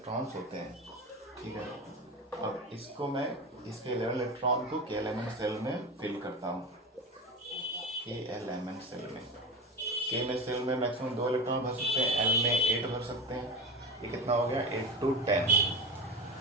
होते हैं। ठीक है, अब इसको मैं, इसके 11 इलेक्ट्रॉन को के एलिमेंट सेल में फिल करता हूँ, के एलिमेंट सेल में। के में सेल में मैक्सिमम 2 इलेक्ट्रॉन भर सकते हैं, एल में 8 भर सकते हैं। ये कितना हो गया, 8 to 10,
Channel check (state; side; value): normal; both; correlation 0.26